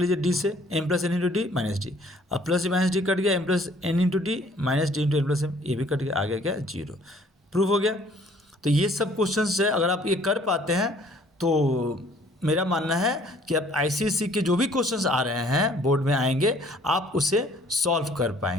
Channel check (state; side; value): normal; both; correlation 0.58